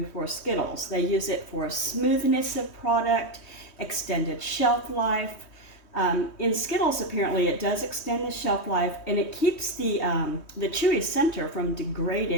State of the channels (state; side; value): late; right; 3.2 ms